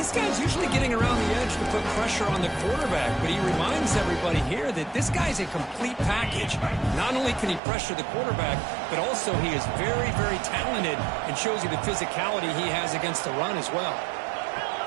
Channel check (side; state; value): left; drops out; at 7.6 s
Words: guy's usually getting around the edge to put pressure on the quarterback, but he reminds everybody here that this guy's a complete package. Not only can he pressure the quarterback, but also he is very, very talented and shows you the physicality he has against the run as well.